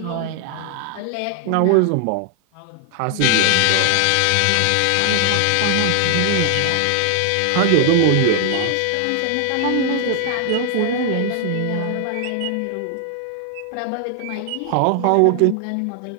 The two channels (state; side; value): different; both; correlation 0.00